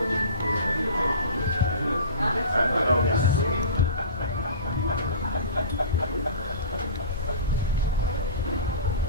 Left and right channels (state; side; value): inverted; both; correlation -0.37